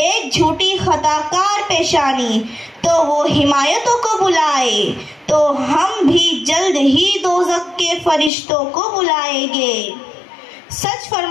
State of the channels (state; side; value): drops out; right; at 8.3 s